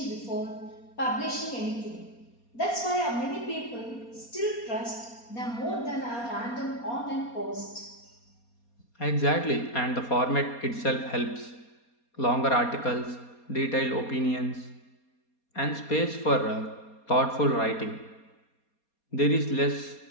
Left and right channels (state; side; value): late; right; 4.2 ms